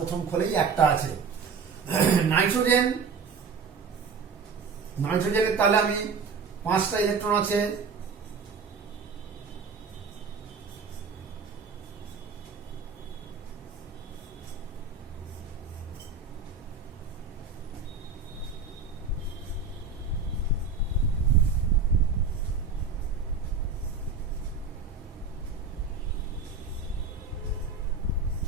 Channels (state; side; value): quieter; left; 5.1 dB